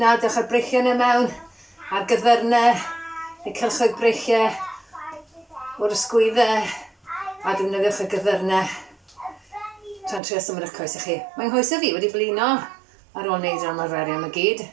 dewch ar breichiau yna mewn, ar gyddyrnau, neu cylchoedd breichiau, o'r ysgwyddau, a defnyddiwch y gyddyrnau. Tra'n trio symud eich coesau chi. Mae'n hoesau fi wedi blino ar ôl wneud yr ymarferion y gyd.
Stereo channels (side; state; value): left; drops out; at 10.2 s